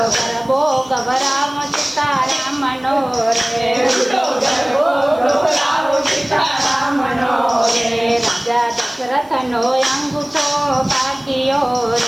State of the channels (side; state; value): left; noise; hiss, 28 dB below the sound